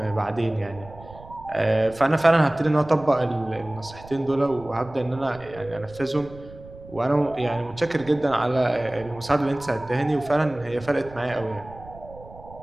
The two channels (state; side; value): noise; right; rumble, 19 dB below the sound